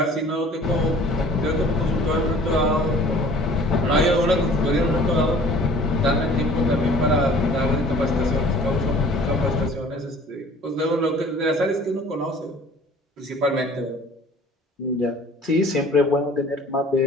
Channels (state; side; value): normal; both; correlation 0.50